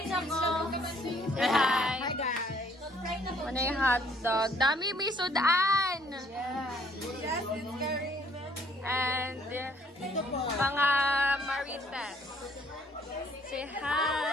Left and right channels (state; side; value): normal; both; correlation 0.63